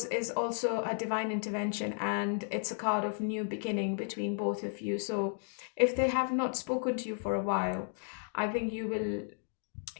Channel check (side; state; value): right; silent; 55 dB below the other